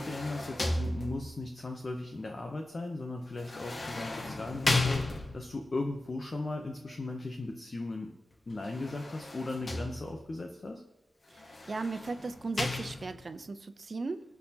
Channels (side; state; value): both; normal; correlation 0.93